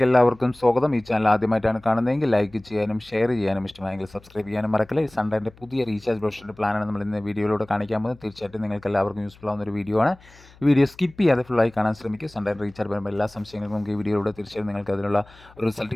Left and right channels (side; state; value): left; noise; hum, 25 dB below the sound